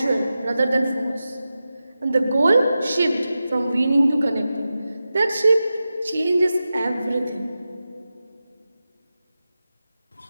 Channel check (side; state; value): both; inverted; correlation -0.93